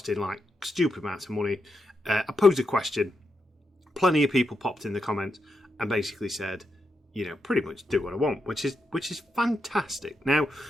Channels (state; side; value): normal; both; correlation 0.84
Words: like stupid amounts of money. I posed a question. Plenty of people popped in the comments and basically said, pretty much do what I want, which is fantastic. Now,